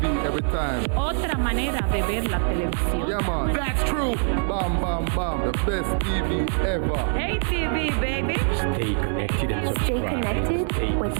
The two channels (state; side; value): silent; left; digital silence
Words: Every time. Otra manera de ver la televisión. Yeah, man. That's true. Bam, bam, bam. The best TV ever. Hey TV, baby. Stay connected and subscribe. Stay connected with